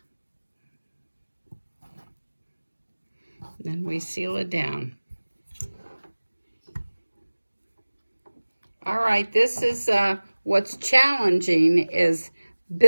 Then we seal it down. All right, this is what's challenging is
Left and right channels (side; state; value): both; inverted; correlation -1.00